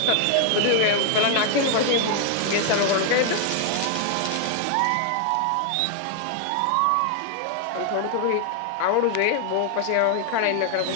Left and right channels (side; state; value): both; different; correlation 0.00